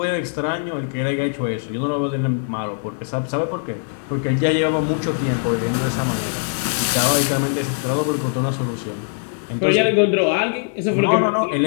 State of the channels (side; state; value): right; silent; 65 dB below the other